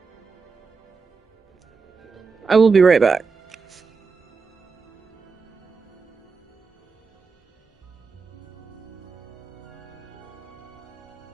I will be right back.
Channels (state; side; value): quieter; left; 4.9 dB